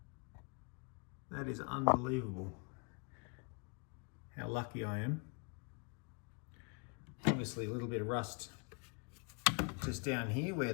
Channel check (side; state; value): right; quieter; 35.4 dB